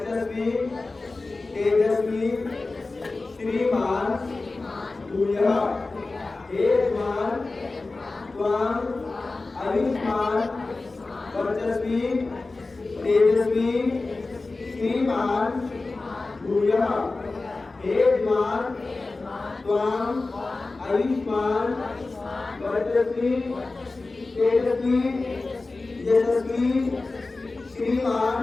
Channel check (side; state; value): right; quieter; 3.5 dB